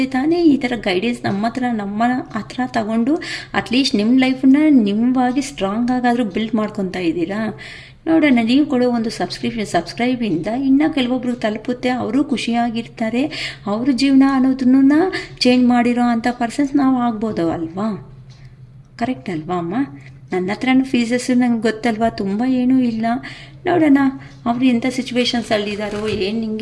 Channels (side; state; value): both; identical; correlation 1.00